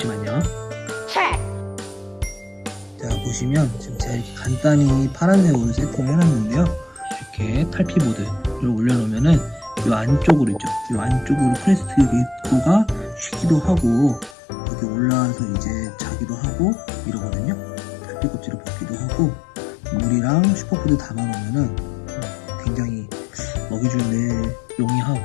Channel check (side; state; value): right; drops out; at 14.4 s